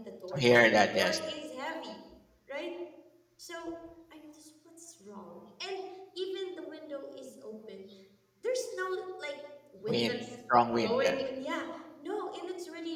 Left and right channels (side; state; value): both; identical; correlation 1.00